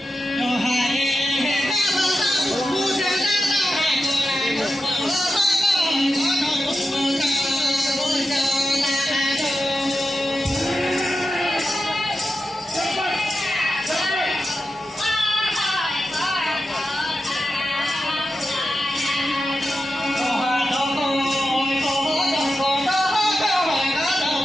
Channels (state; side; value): normal; both; correlation 0.91